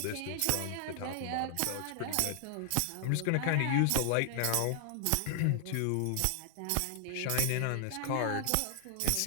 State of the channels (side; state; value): both; different; correlation -0.01